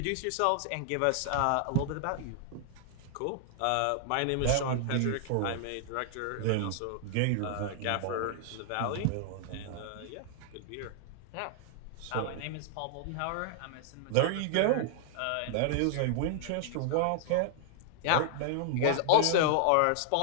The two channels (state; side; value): different; both; correlation -0.01